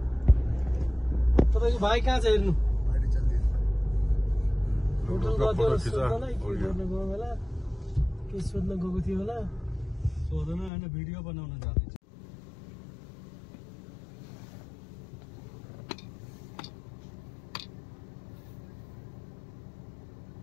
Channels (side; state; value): right; drops out; at 10.7 s